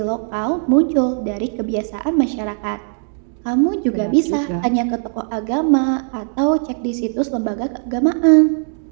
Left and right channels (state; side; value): silent; left; 58 dB below the other